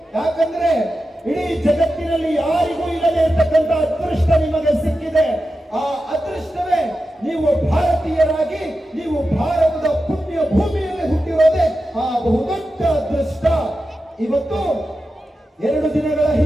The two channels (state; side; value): normal; both; correlation 0.91